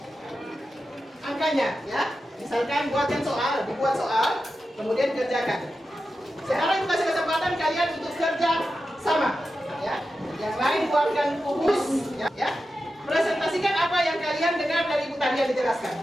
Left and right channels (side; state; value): both; normal; correlation 0.91